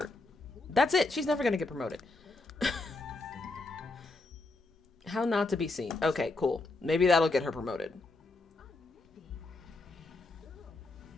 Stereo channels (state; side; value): quieter; right; 3.3 dB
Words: That's it. She's never gonna get promoted. How not to be seen. Okay, cool. Maybe that'll get her promoted.